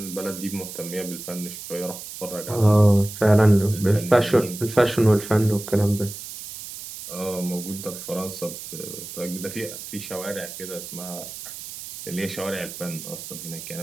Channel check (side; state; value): right; noise; hiss, 11 dB below the sound